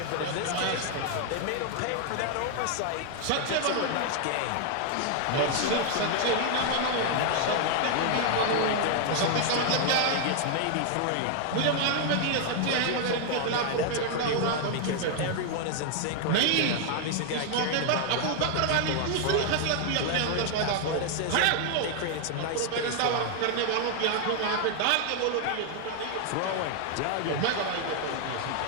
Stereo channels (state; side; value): different; both; correlation 0.00